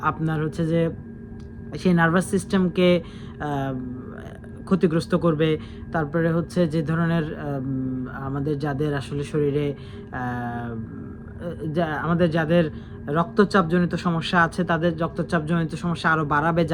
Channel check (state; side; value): identical; both; correlation 1.00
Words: আপনার হচ্ছে যে সেই নার্ভাস সিস্টেমকে ক্ষতিগ্রস্ত করবে। তারপরে হচ্ছে যে ধরনের আমাদের যাদের আসলে শরীরে আমাদের যাদের রক্তচাপজনিত সমস্যা আছে তাদের রক্তচাপজনিত সমস্যা আরও বাড়াবে,